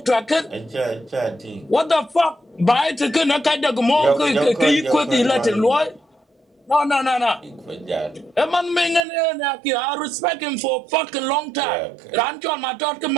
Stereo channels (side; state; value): left; drops out; at 9.0 s